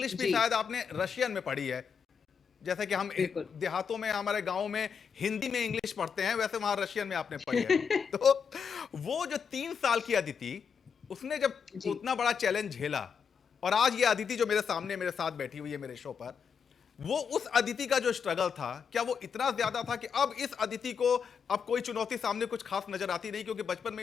भी जी। शायद आपने रशियन में पढ़ी है। जैसे कि हम बिल्कुल। देहातों में, हमारे गांव में हिंदी में इंग्लिश पढ़ते हैं, वैसे वहां रशियन में आपने पढ़ी है। तो वो जो 3 साल की अदिति, उसने जब जी। उतना बड़ा चैलेंज झेला, और आज ये अदिति जो मेरे सामने मेरे साथ बैठी हुई है मेरे शो पर, वो उस अदिति का जो स्ट्रगल था, क्या वो इतना ज्यादा था कि अब इस अदिति को अब कोई चुनौती सामने कुछ खास नजर आती नहीं, क्योंकि बचपन में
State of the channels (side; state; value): right; quieter; 6.6 dB